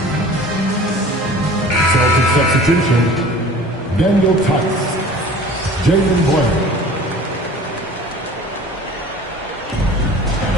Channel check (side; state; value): both; normal; correlation 0.44